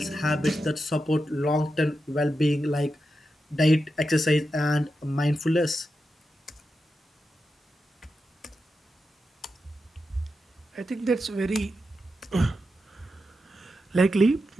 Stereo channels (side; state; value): both; normal; correlation 0.88